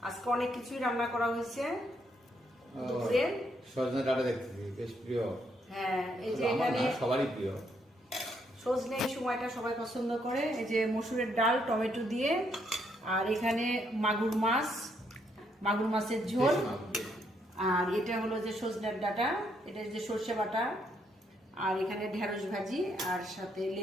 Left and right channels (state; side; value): normal; both; correlation 0.74